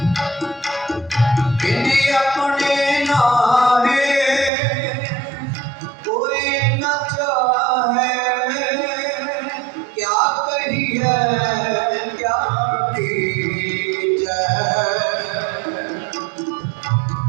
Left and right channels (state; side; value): drops out; left; at 4.5 s